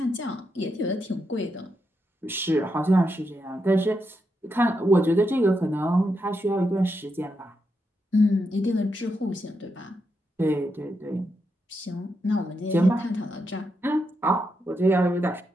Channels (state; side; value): normal; both; correlation 0.83